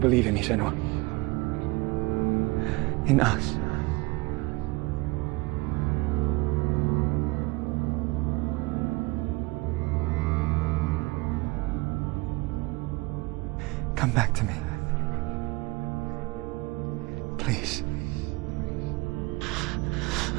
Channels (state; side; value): quieter; left; 24.0 dB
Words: in me, Senua? In us? Come back to me. Please.